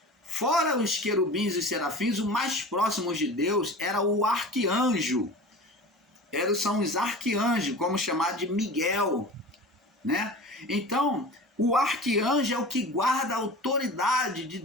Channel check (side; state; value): both; normal; correlation 0.36